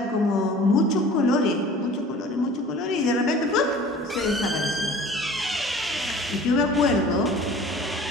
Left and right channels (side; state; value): both; normal; correlation 0.45